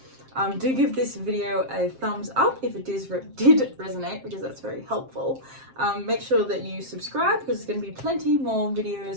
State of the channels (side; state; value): left; late; 7.6 ms